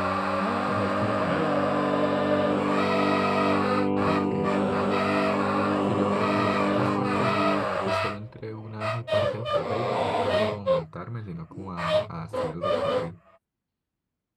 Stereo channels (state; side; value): identical; both; correlation 1.00